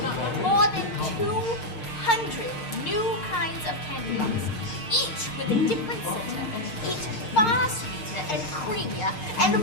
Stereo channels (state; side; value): late; right; 6.5 ms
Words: more than 200 new kinds of candy bars, each with a different center, each far sweeter and creamier and